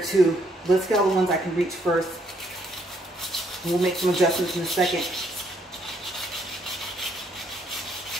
Let's get all the ones I can reach first. We'll make some adjustments in a second.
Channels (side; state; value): both; normal; correlation 0.70